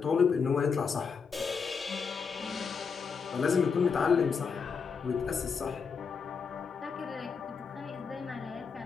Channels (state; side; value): quieter; right; 5.8 dB